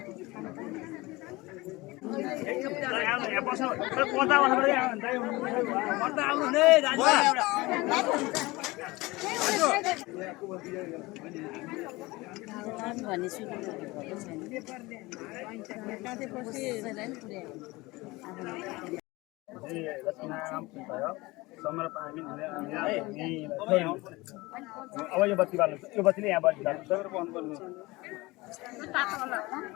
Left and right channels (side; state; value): right; quieter; 21.8 dB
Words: अब यो बत्ती बाल्नु यो बत्तीले यहाँ बत्ती बाल्नु